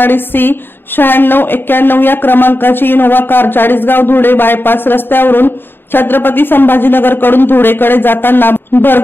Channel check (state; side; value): late; right; 0.10 ms